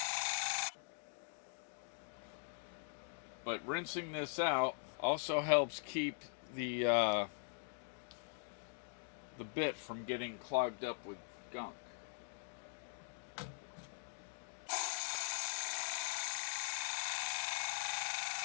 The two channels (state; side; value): silent; right; digital silence